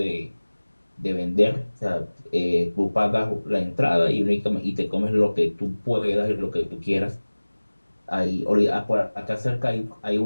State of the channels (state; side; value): inverted; both; correlation -1.00